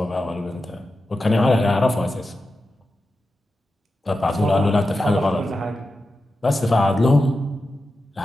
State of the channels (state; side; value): normal; both; correlation 0.91